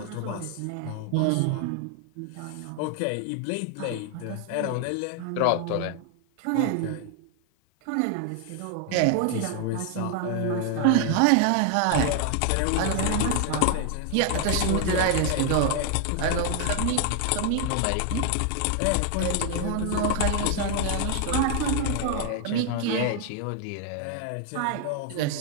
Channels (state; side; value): different; both; correlation 0.00